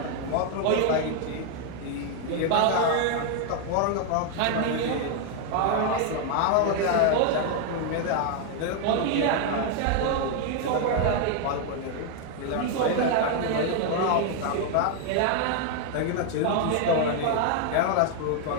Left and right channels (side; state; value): both; different; correlation 0.00